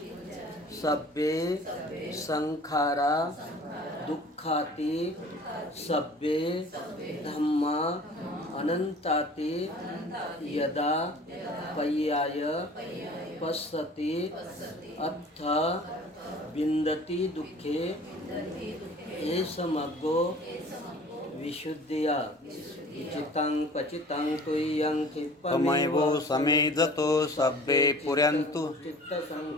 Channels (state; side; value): normal; both; correlation 0.46